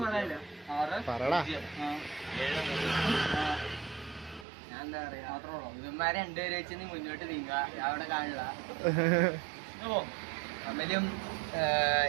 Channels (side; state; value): left; drops out; at 4.5 s